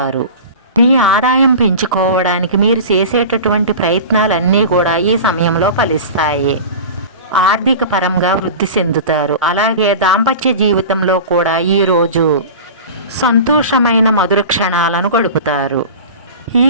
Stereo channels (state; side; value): inverted; both; correlation -0.34